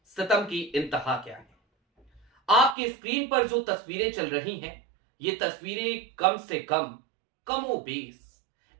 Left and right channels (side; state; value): left; drops out; at 2.8 s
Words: सितम की इंतहा क्या है। आपकी स्क्रीन पर जो तस्वीरें चल रही हैं, ये तस्वीरें कम से कम कमोबेश